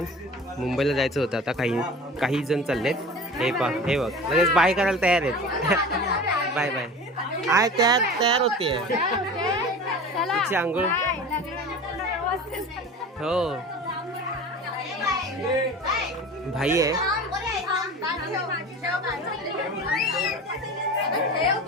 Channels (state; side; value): normal; both; correlation 0.36